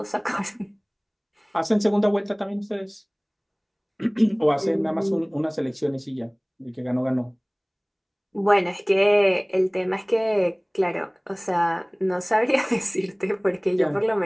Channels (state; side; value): identical; both; correlation 1.00